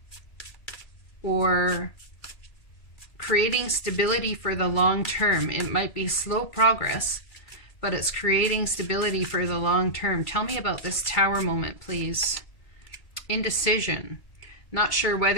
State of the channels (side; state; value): right; late; 2.3 ms